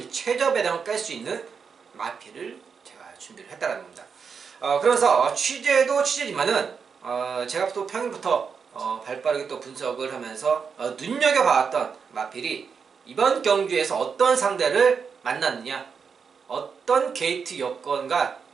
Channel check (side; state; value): left; quieter; 6.0 dB